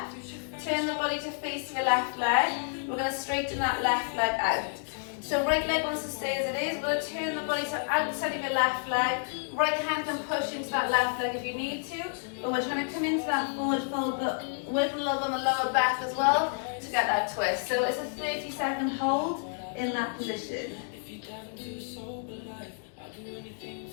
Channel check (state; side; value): silent; right; 58 dB below the other